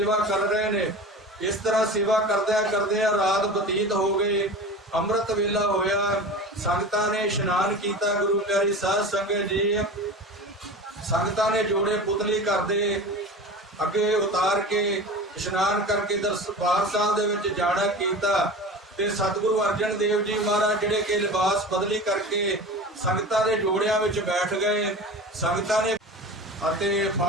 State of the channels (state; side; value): normal; both; correlation 0.33